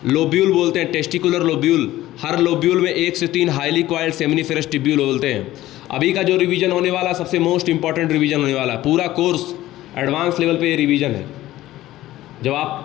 लोब्यूल बोलते हैं, टेस्टिकुलर लोब्यूल। हर लोब्यूल में 1 से 3 हाईली कॉइल्ड सेमिनिफेरस ट्यूब्यूल बोलते हैं। अभी का जो रिवीजन होने वाला सबसे मोस्ट इंपॉर्टेंट रिवीजन होने वाला है, पूरा कोर्स एडवांस लेवल पे ये रिवीजन है। जब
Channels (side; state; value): right; quieter; 15.5 dB